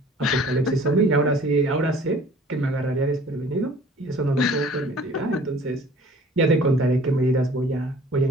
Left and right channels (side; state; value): both; normal; correlation 0.50